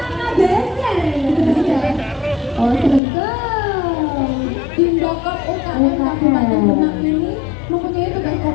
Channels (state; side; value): drops out; right; at 3.0 s